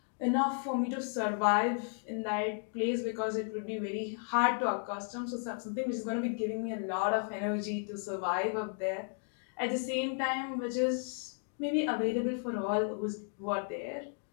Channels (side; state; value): right; silent; 55 dB below the other